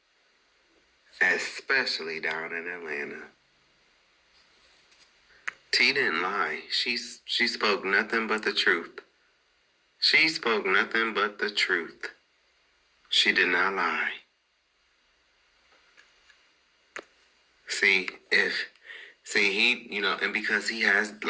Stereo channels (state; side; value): identical; both; correlation 1.00